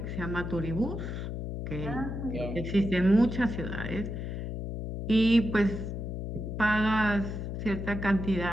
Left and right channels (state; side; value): noise; left; hum, 5 dB below the sound